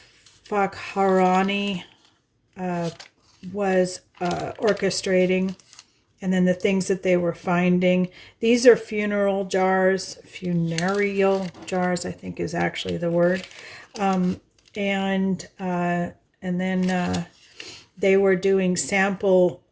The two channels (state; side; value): identical; both; correlation 1.00